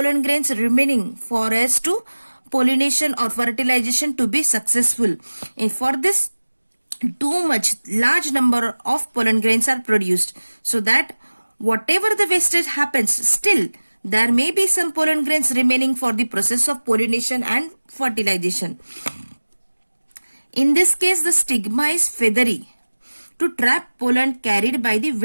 grains remaining for us to pollination or fertilization to be successful. And for this, too much large number of pollen grains are produced, so that whatever the wastage happens, still there may be some pollen grains remaining for the process of pollination and fertilization. In this case, the stigma is feathery to trap pollen carried by the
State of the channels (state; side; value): inverted; both; correlation -1.00